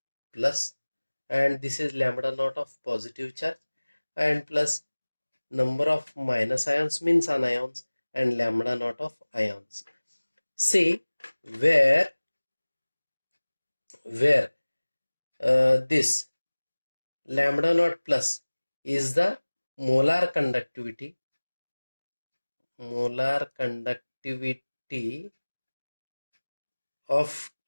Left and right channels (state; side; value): inverted; both; correlation -1.00